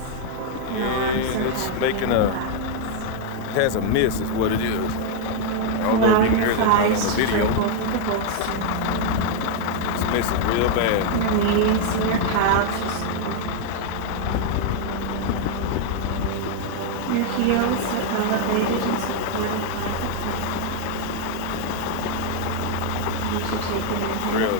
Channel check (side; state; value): both; different; correlation 0.00